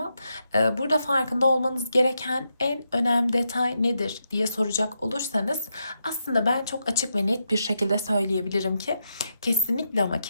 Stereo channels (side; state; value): both; inverted; correlation -0.84